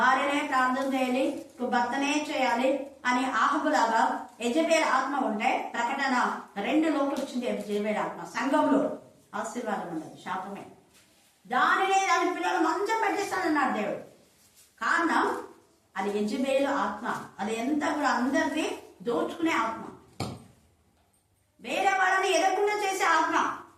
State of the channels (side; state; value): both; identical; correlation 1.00